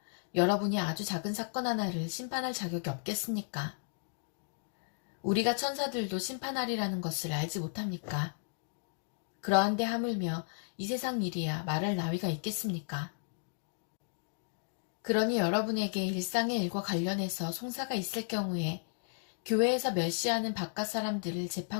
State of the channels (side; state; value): right; silent; digital silence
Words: 여러분이 아주 작은 사건 하나를 심판할 자격이 없겠습니까? 우리가 천사들도 심판하리라는 것을 알지 못합니까? 그러한데 하물며 이 세상 일이야 말할 나위가 있겠습니까? 그러니 여러분에게 일상의 일과 관련해서 송사가 있을 경우에 교회에서 멸시하는 바깥 사람들을